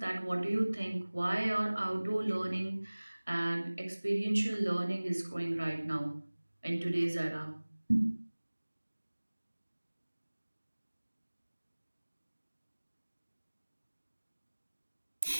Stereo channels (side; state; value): both; inverted; correlation -1.00